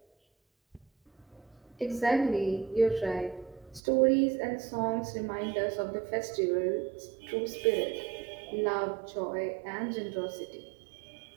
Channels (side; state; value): left; drops out; at 3.8 s